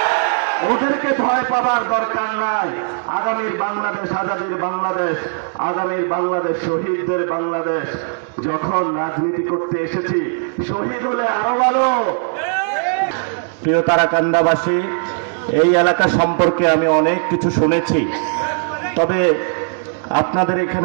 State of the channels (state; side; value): silent; left; digital silence